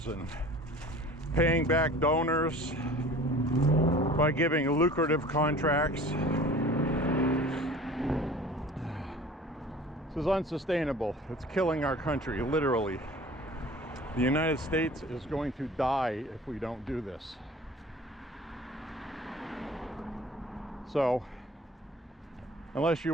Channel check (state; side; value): normal; both; correlation 0.44